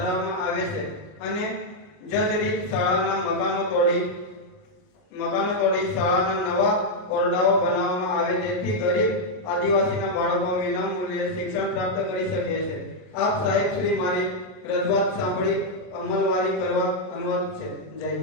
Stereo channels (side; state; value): right; late; 39 ms